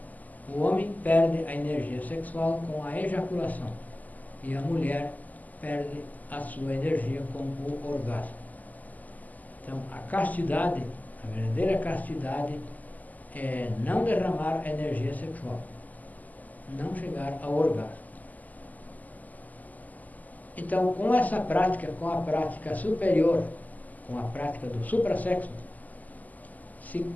O homem perde a energia sexual com a ejaculação e a mulher perde a sua energia com o orgasmo. Então, a castidade, a verdadeira castidade, é não derramar a energia sexual, não chegar ao orgasmo. Então, com essa prática, com a prática superior, com a prática do suprassexo, se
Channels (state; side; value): late; right; 0.080 ms